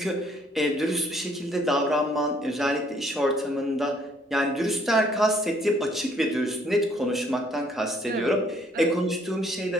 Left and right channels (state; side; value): normal; both; correlation 0.64